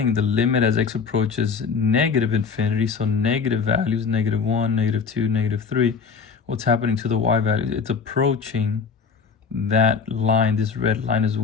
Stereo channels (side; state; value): right; quieter; 5.7 dB